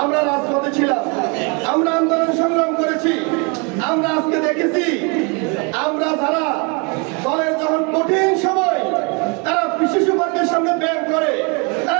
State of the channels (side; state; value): left; quieter; 32.5 dB